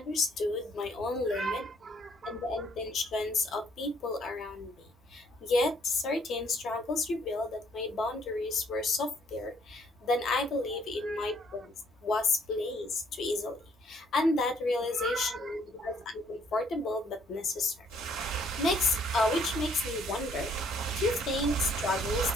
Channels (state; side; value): normal; both; correlation 0.65